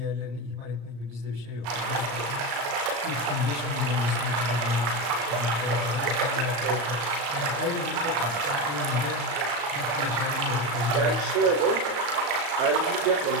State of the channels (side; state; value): left; late; 34 ms